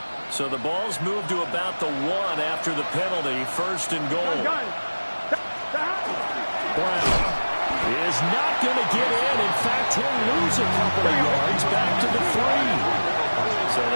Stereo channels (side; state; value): both; inverted; correlation -1.00